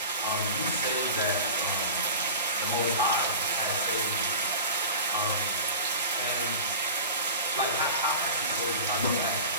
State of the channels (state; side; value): inverted; both; correlation -0.33